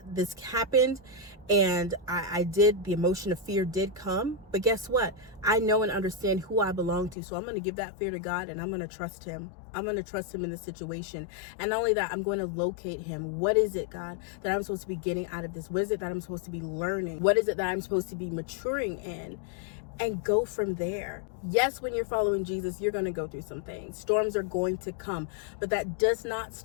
this happened and I did, the emotion of fear did come, but guess what? I know and understand who I belong to. So I'm going to give that fear to God and I'm going to trust him. I'm going to trust him in the situation. And not only that, I'm going to locate him. What is it, God, that I'm supposed to be getting out of this? What is it that I'm supposed to be learning? What is it that I'm supposed to be maturing in? And go from there. Yes, when you're following Jesus, you're going to go through some things. Storms are going to come, but that does not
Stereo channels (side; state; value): right; drops out; at 7.2 s